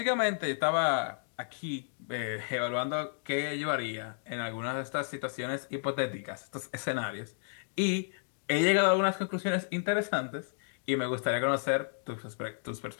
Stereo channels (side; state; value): right; silent; digital silence